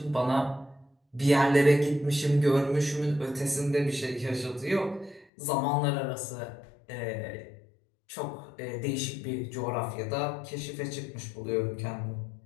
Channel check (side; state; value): right; drops out; at 5.2 s